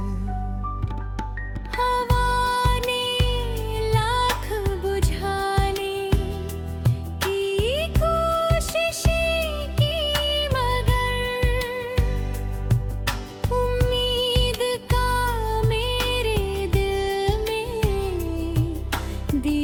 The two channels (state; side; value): identical; both; correlation 1.00